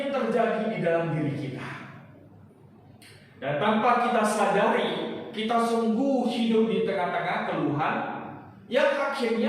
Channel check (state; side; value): identical; both; correlation 1.00